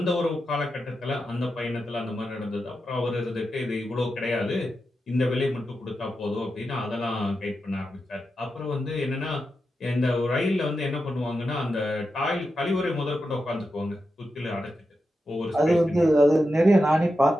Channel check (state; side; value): normal; both; correlation 0.89